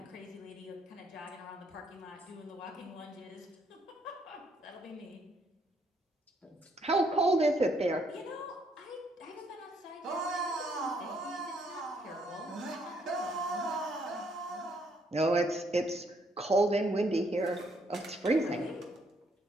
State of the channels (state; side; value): normal; both; correlation 0.70